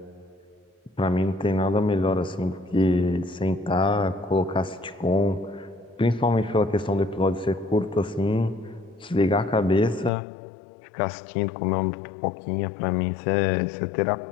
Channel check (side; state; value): right; drops out; at 10.1 s